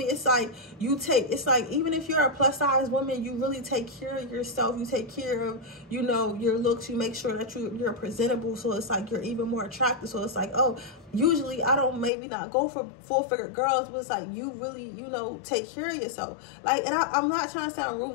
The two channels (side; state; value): right; drops out; at 12.1 s